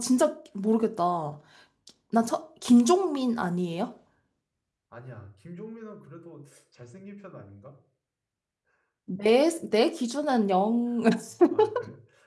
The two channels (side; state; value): both; identical; correlation 1.00